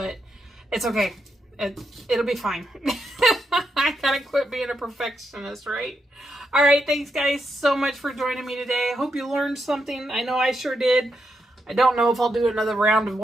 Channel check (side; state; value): both; normal; correlation 0.82